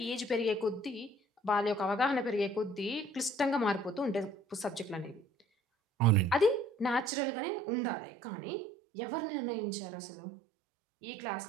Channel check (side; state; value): left; drops out; at 7.1 s